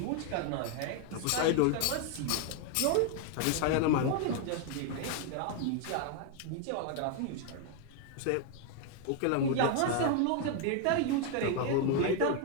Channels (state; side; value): different; both; correlation 0.00